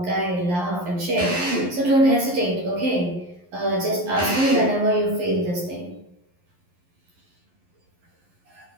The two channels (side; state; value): left; late; 11 ms